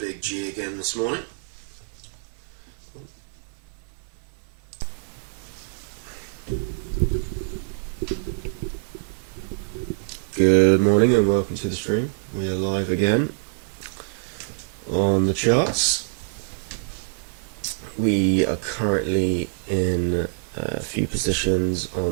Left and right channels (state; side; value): silent; left; digital silence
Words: big G again this morning. Good morning and welcome to the stream. We are live again on the charts. We are currently in a few positions